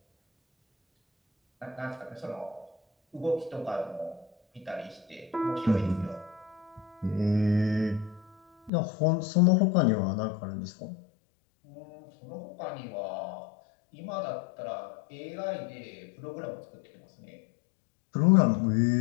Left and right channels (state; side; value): drops out; right; at 8.7 s